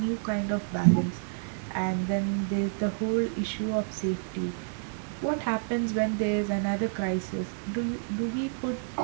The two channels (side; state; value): left; silent; digital silence